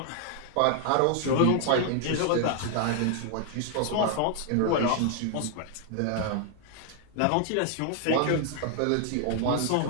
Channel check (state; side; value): different; both; correlation 0.00